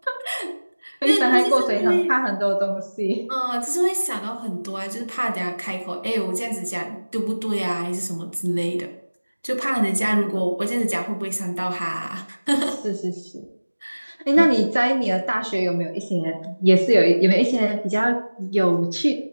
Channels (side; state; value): both; inverted; correlation -1.00